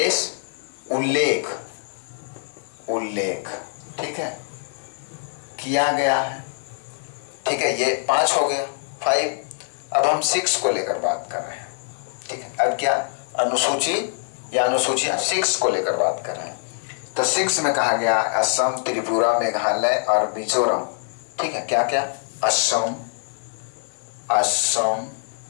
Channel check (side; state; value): right; silent; 61 dB below the other